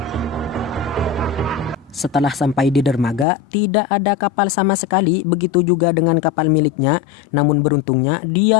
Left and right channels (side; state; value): right; drops out; at 3.2 s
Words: Setelah sampai di dermaga, tidak ada kapal sama sekali, begitu juga dengan kapal miliknya. Namun beruntungnya, dia